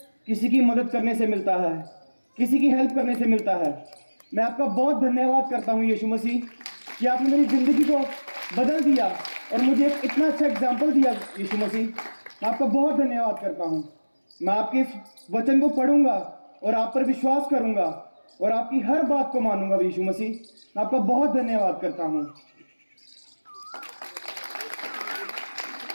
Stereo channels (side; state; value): both; inverted; correlation -1.00